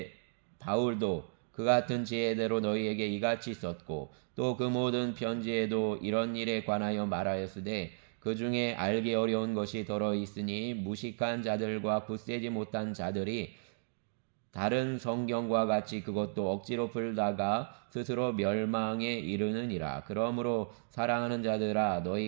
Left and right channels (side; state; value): left; silent; digital silence